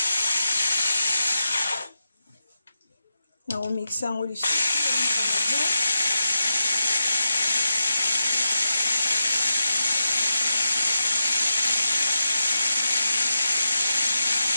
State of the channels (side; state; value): both; inverted; correlation -0.88